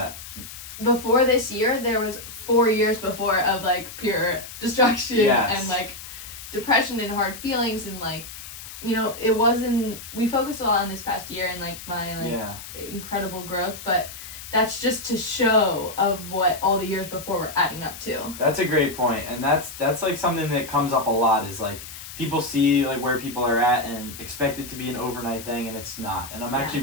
Before this year, there was 4 years before of like pure destruction and like depression and hard feelings and like it wasn't, we focused a lot on this past year and like my Yeah. incredible growth, but that's just to show of what all the years before were adding up to. That's a great point, and that's like something that comes up a lot is like people see like where people are at and expect it to be an overnight thing, and it's not. And I'm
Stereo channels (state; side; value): noise; left; hiss, 13 dB below the sound